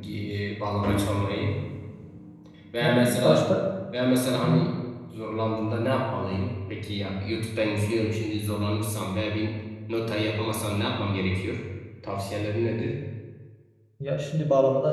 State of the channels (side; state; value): both; identical; correlation 1.00